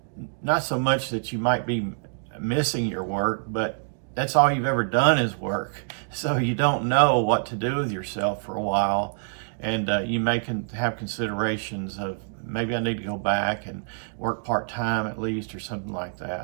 so much that you might be missing your work, but that's all you've ever done is work. So you don't know what to do with yourself for a while. And you may have considerations of maybe I need to go back and work part-time at least or something like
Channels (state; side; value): silent; left; digital silence